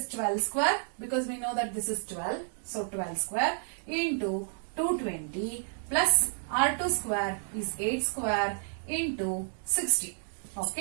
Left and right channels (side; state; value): left; silent; digital silence